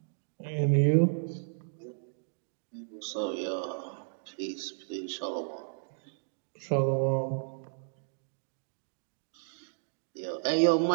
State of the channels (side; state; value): left; silent; digital silence